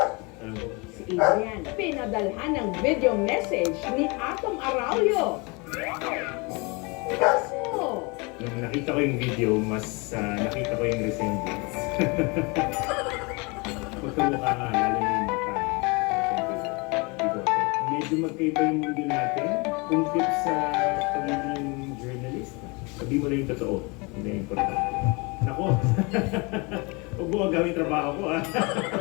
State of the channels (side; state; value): right; quieter; 28.6 dB